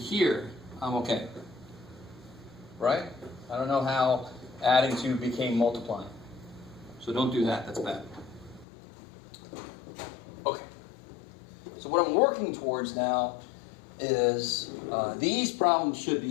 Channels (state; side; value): drops out; right; at 8.7 s